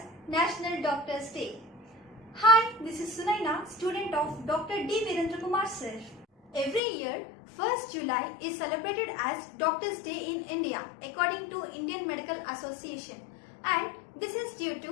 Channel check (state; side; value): drops out; right; at 6.8 s